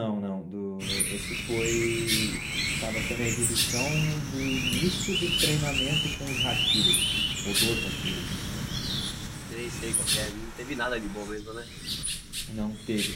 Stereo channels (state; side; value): identical; both; correlation 1.00